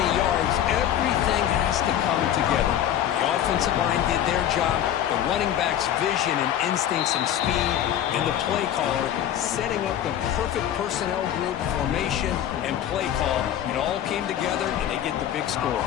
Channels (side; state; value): right; quieter; 10.9 dB